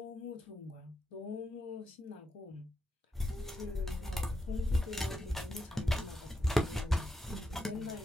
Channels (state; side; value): normal; both; correlation 0.84